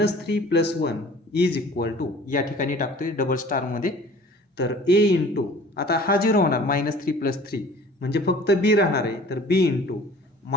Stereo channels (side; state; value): both; normal; correlation 0.48